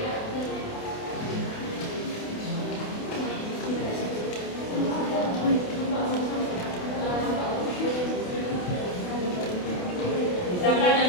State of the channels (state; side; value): late; right; 28 ms